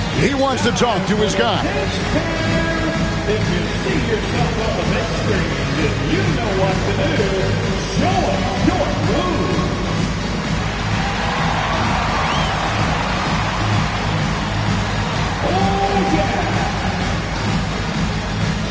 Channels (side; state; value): both; identical; correlation 1.00